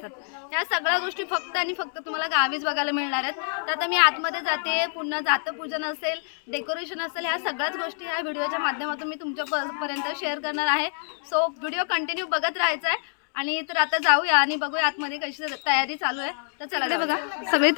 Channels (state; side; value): silent; right; digital silence